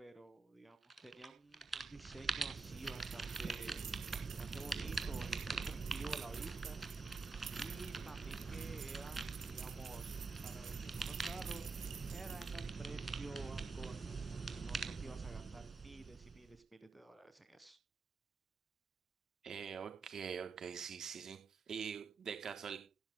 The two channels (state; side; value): quieter; left; 4.2 dB